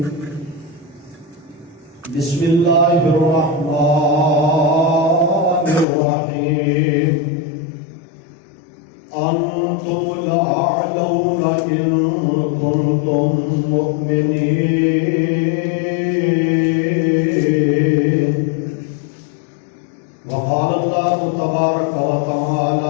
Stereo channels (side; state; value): right; drops out; at 5.9 s